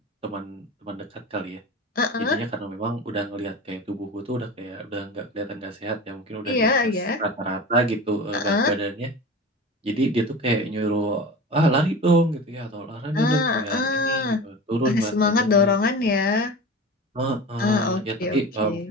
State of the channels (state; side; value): normal; both; correlation 0.33